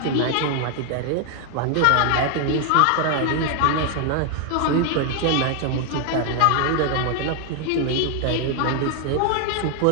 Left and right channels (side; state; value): both; different; correlation 0.00